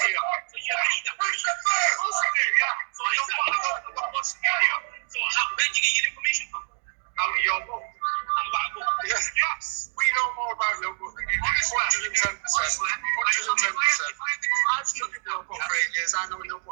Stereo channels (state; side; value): silent; left; 61 dB below the other